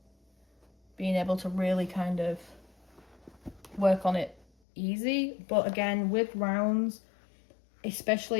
being able to really kind of work on it easy. But again, with rounds,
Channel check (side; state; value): right; drops out; at 4.5 s